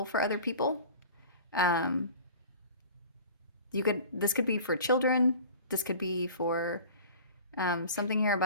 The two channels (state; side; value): inverted; both; correlation -0.41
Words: for other people. This could be for children. This could be for something here